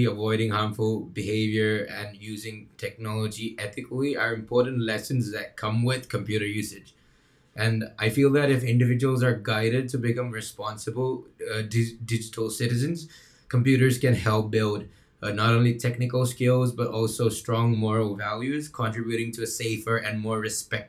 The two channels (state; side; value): identical; both; correlation 1.00